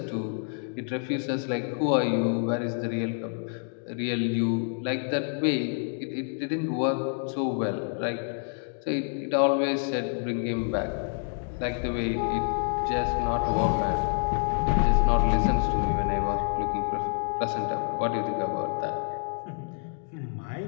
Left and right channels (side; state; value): right; silent; 57 dB below the other